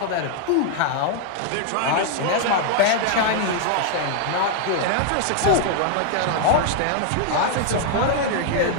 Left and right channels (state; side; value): different; both; correlation 0.00